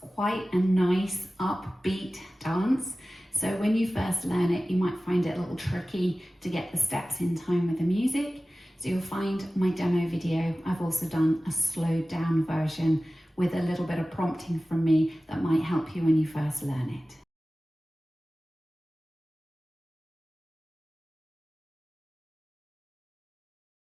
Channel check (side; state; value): both; normal; correlation 0.96